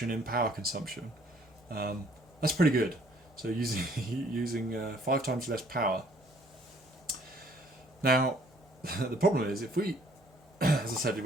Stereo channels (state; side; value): normal; both; correlation 0.60